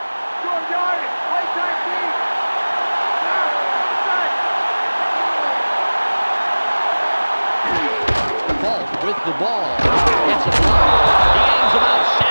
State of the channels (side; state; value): both; inverted; correlation -1.00